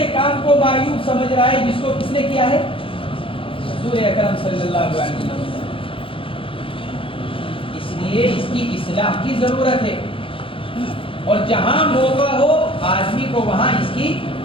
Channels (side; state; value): right; late; 0.26 ms